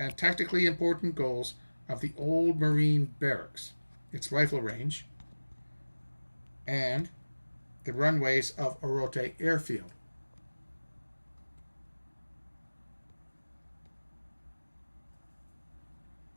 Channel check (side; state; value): both; inverted; correlation -1.00